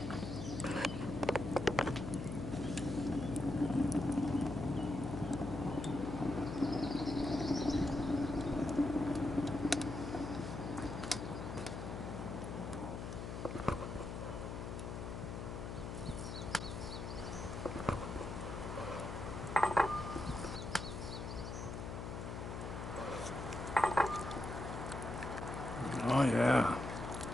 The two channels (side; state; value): left; noise; hum, 6 dB below the sound